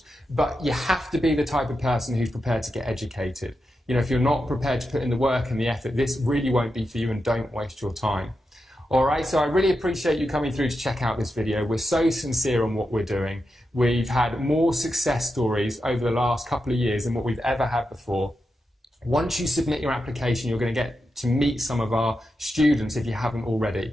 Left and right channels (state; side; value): normal; both; correlation 0.88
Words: But you have to be the type of person who's prepared to get educated. You know, if you're not prepared to put in the work and the effort, this really won't be for you, and don't waste your time. All right, so I really appreciate you coming through to check out this video. We're so sincere on what we're doing. We've had more success stories over the last couple of years than what we've ever had before. Once you submit your application, you're going to get to meet some of our students if you haven't